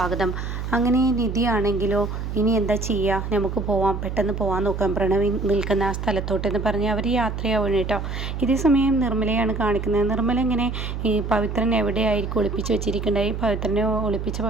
അങ്ങനെ നിധിയാണെങ്കിലോ ഇനി എന്താ ചെയ്യുക, നമുക്ക് പോവാം, പെട്ടെന്ന് പോകാൻ നോക്കാം പ്രണവി നിൽക്കുന്ന ആ സ്ഥലത്തോട്ടെന്ന് പറഞ്ഞ് അവർ യാത്രയാവണം കേട്ടോ. ഇതേ സമയം നിർമ്മലയാണ് കാണിക്കുന്നത്. നിർമ്മല ഇങ്ങനെ ഈ പവിത്രൻ എവിടെയായിരിക്കും ഒളിപ്പിച്ച് വെച്ചിരിക്കേണ്ടത്, ഈ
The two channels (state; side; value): noise; right; hum, 5 dB below the sound